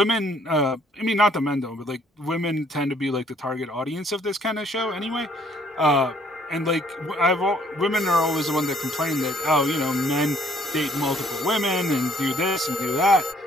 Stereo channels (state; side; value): normal; both; correlation 0.63